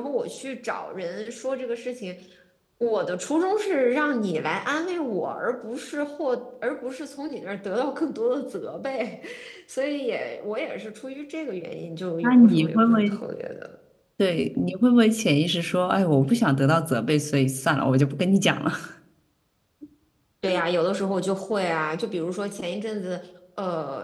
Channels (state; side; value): identical; both; correlation 1.00